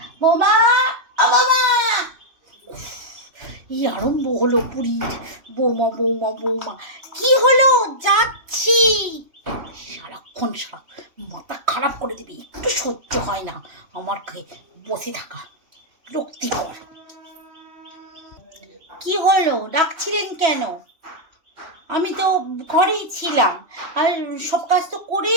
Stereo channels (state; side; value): late; left; 3.1 ms